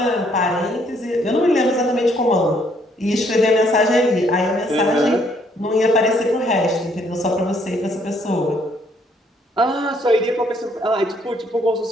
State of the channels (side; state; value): both; normal; correlation 0.67